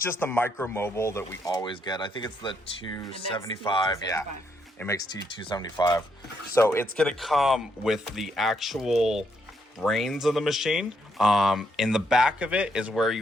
the Micromobile that we always get. I think it's the 275. Yeah, it makes T275. So it's gonna come with the actual brains of the machine. In the back of it is where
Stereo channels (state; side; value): normal; both; correlation 0.76